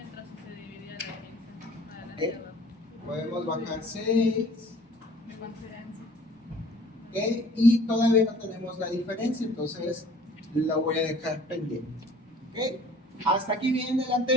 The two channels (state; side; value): normal; both; correlation 0.51